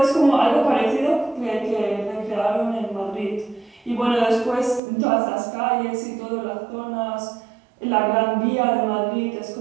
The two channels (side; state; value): left; drops out; at 4.8 s